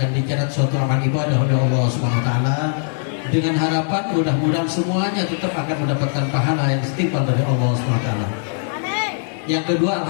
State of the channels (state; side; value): silent; right; 66 dB below the other